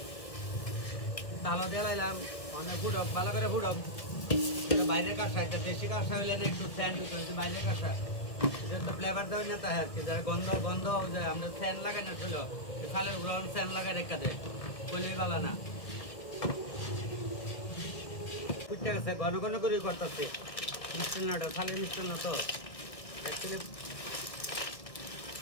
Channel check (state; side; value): late; right; 1.5 ms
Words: তালা দিয়ে লাইলাম, অনেক ফুটক, ভালো করে ফুটক। বাইরের কাঁসা, এটা দেশি কাঁসা হইলে না একটু স্যান্ড হইতে হয়েছে, বাইরের কাঁসা এটা তো ফ্লেভার দেওয়া না, তাই আর কি। যারা গন্ধ যে আমরা স্যান্ড লাগাই না ছিল, খালের গ্রহণ স্যান্ড লাগাই রেখা দেয়, কইলেই ভালো না। ফুটতে গেছে, ঘন করে করতেছে মিষ্টান্নটা, খালের মিষ্টান্ন তো অ্যাকচুয়ালি।